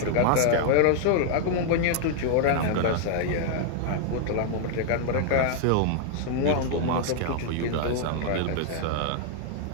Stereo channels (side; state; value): both; different; correlation 0.00